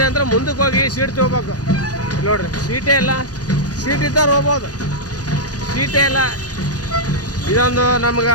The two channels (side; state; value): right; late; 0.68 ms